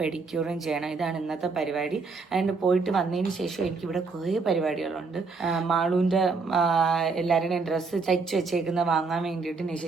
ചെയ്യണം. ഇതാണ് ഇന്നത്തെ പരിപാടി. ആൻഡ് പോയിട്ട് വന്നതിന് ശേഷം എനിക്കിവിടെ കുറേ പരിപാടികളുണ്ട്. മാളൂന്റെ എല്ലാവരുടെയും ഡ്രസ്സ് തയ്ച്ചു വെച്ചേക്കുന്ന വാങ്ങാൻ വേണ്ടിയിട്ട് നിശ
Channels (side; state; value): left; quieter; 4.4 dB